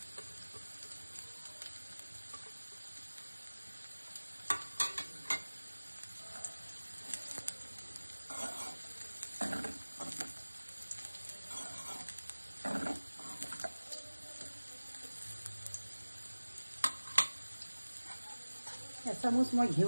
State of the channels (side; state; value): both; inverted; correlation -1.00